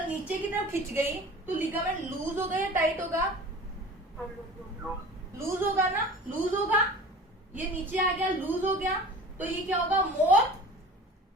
नीचे की तरफ खिंच गई तो लिगामेंट लूज होगा या टाइट होगा, लूज होगा ना, लूज होगा। ये नीचे आ गया, लूज हो गया तो ये क्या होगा, more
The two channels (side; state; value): both; normal; correlation 0.40